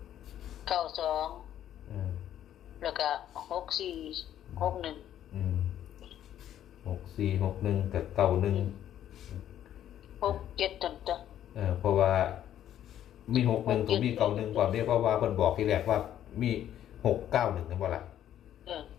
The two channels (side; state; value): right; quieter; 11.1 dB